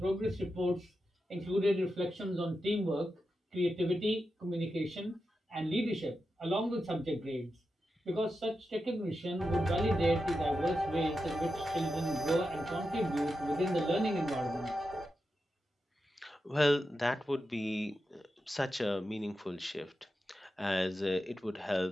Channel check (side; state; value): both; normal; correlation 0.89